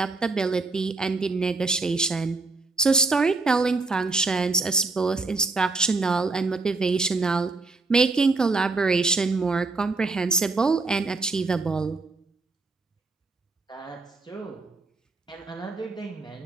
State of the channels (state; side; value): quieter; left; 3.6 dB